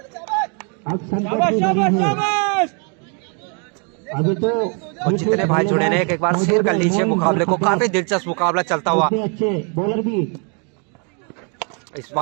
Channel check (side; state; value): left; quieter; 37.6 dB